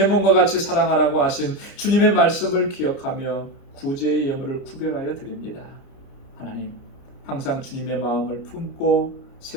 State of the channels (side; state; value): right; late; 30 ms